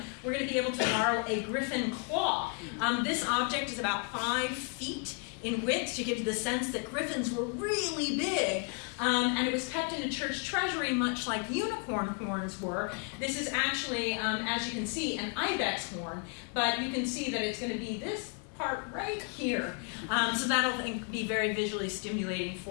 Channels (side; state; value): right; quieter; 37.8 dB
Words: we're going to be able to borrow a griffin claw. This object is about 5 feet in width to give you the sense that griffins were really big. And it was kept in a church treasury much like unicorn horns were. This is actually, as you can see, an ibex horn, but you can see that it's going to be this part right here. So that'll be very visually stimulating